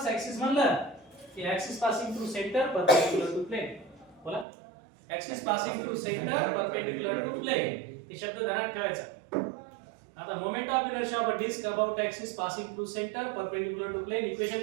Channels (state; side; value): drops out; left; at 4.5 s